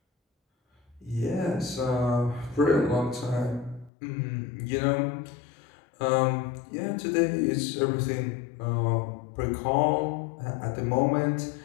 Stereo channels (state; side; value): drops out; right; at 3.9 s